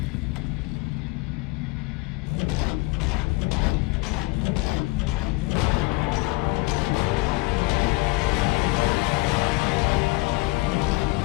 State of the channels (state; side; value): quieter; right; 24.1 dB